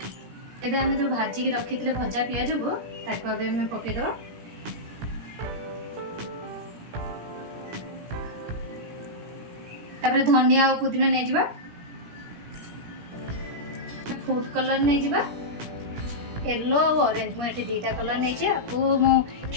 एबे हमें जो भाजी की रखी थे भजा पियाज को ताको अबे हमें पकेदबा। तापर धनिया और पुदीना नहीं जिबा फूड कलर नहीं जिबा येलो और ऑरेंज मु एठी दीटा कलर नहीं छे आपको मु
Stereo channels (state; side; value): late; left; 17 ms